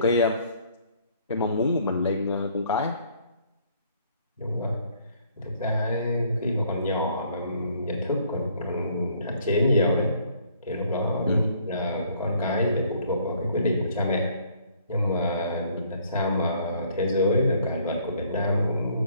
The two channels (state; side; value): inverted; both; correlation -0.62